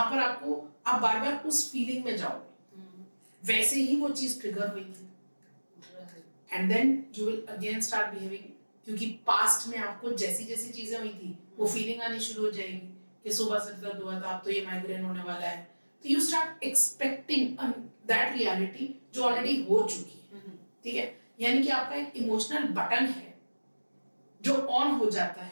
पर आप बार बार उस फीलिंग में जाओगे, वैसे ही वो चीज ट्रिगर हुई थी, and then you will again start behaving, क्योंकि पास्ट में आपको जैसी जैसी चीजें हुई थी वो फीलिंग आनी शुरू हो जाएगी कि सुबह से दर्द हुआ था, अब तो ये माइग्रेन होने वाला है। तो you start expecting that reality जो ऑलरेडी हो चुकी है। ठीक है, यानी कि आपका एक इमोशनल बटन है जो ऑन हो जाता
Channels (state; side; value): inverted; both; correlation -1.00